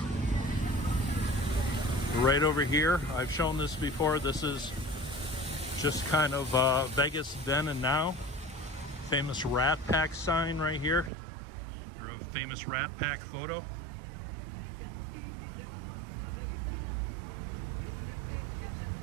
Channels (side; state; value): left; drops out; at 11.1 s